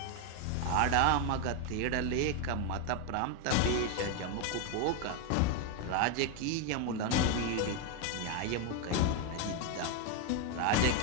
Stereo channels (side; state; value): both; different; correlation 0.01